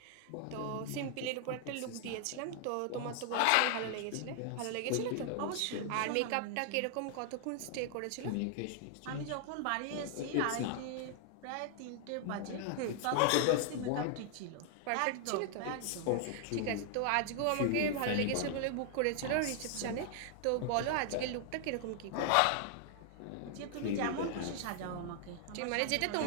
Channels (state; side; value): different; both; correlation 0.00